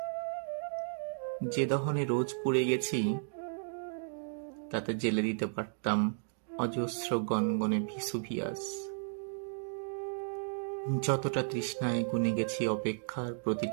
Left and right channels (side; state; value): left; silent; digital silence